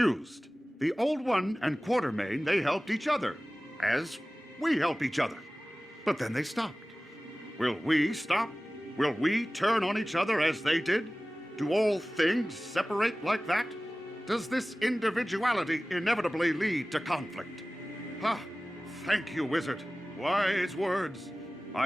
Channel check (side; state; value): both; normal; correlation 0.97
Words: The Old One and Quartermain, they helped each other, as we help each other. But then they stopped. Will we stop? Will we turn on each other as they did? Do all things separate like that? Does this individuality inevitably lead to conflict? Thank you, Wizard. Wise words.